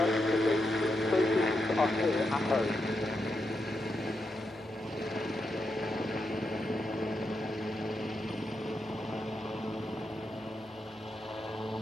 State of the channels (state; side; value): normal; both; correlation 0.84